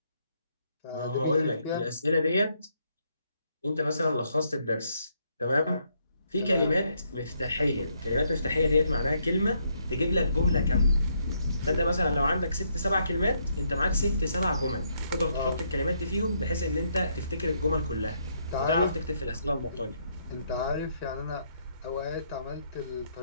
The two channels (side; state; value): both; inverted; correlation -0.74